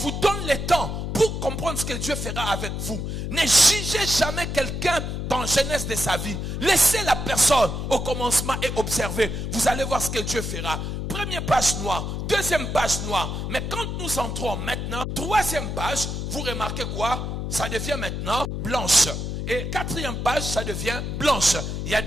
donnent le temps pour comprendre ce que Dieu fera avec vous. Ne jugez jamais quelqu'un dans la jeunesse de sa vie. Laissez la personne au commencement et observez. Vous allez voir ce que Dieu fera. Première page noire, deuxième page noire. Mais quand nous entrons maintenant, troisième page, vous remarquez quoi? Ça devient maintenant blanche. Et quatrième page, ça devient blanche. Il y a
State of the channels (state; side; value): noise; left; hum, 4 dB below the sound